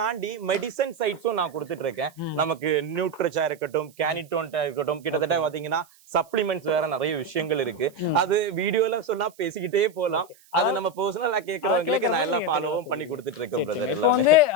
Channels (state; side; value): noise; right; hiss, 28 dB below the sound